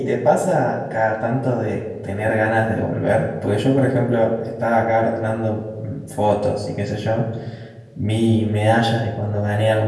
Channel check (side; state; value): both; identical; correlation 1.00